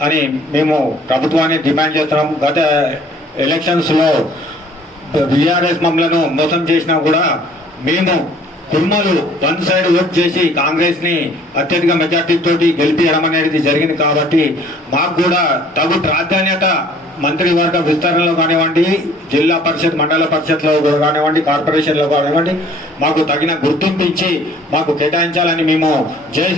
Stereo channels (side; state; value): both; normal; correlation 0.55